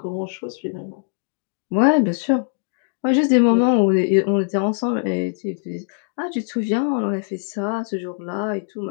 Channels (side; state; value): right; silent; 64 dB below the other